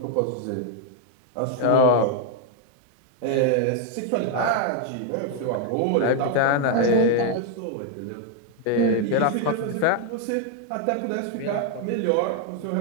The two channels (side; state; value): both; different; correlation 0.00